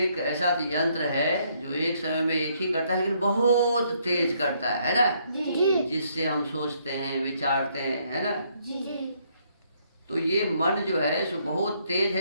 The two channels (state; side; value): inverted; both; correlation -0.70